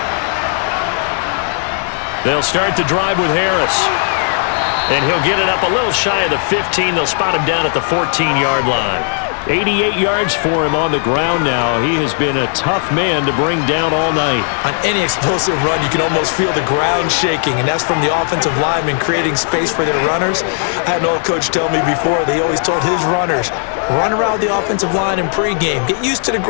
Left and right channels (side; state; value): right; silent; 63 dB below the other